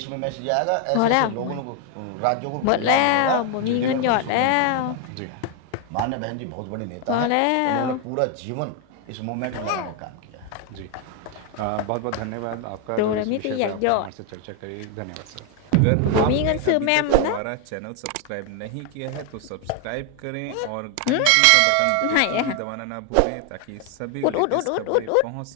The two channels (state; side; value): different; both; correlation 0.01